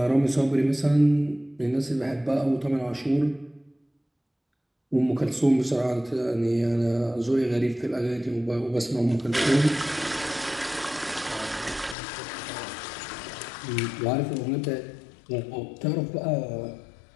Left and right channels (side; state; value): right; drops out; at 12.0 s